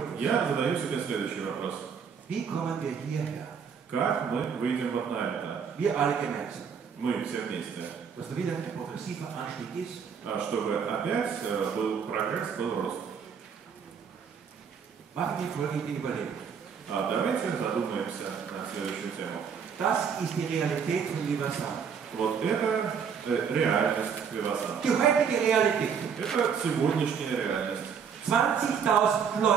задаю себе следующий вопрос. Wie kommen wir hierher? Как мы выйдем вот на это? Wir alle gemeinsam. Мы все вместе. Dass da wieder ein progressiver Anstieg ist. Чтобы опять был прогресс, был рост. Machen wir folgende Überlegung. Давайте задумаемся на следующую тему. Das ist die Realität von Vivasana. Вот это реальность Vivasana. Die heutige Realität. Это сегодняшняя реальность. 20.000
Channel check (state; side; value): quieter; left; 6.9 dB